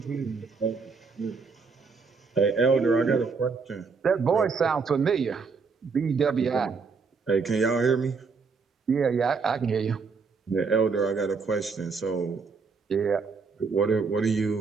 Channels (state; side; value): quieter; left; 4.9 dB